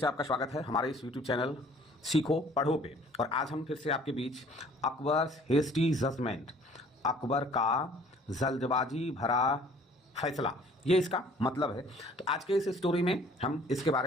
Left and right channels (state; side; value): normal; both; correlation 0.54